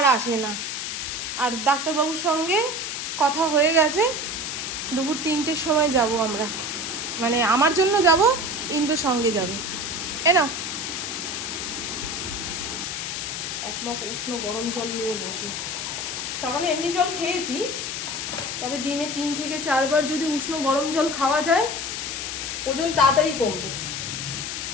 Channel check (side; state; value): left; noise; hiss, 4 dB below the sound